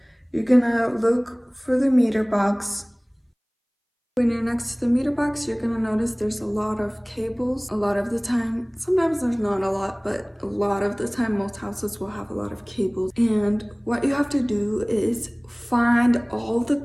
You're gonna look for the meter box. When you're next to the meter box, you're gonna notice there's a lot of cables. A lot of the time, sometimes there's not a lot, but a lot of the time, most houses will have a lot of cables. And what you have to do is find all the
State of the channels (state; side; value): identical; both; correlation 1.00